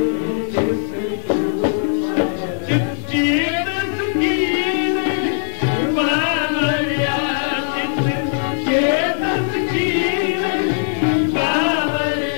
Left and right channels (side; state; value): right; silent; digital silence